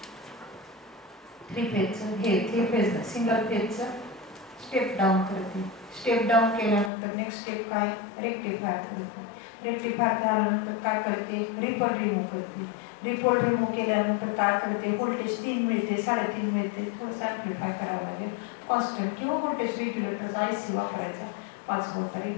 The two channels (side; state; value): right; drops out; at 6.9 s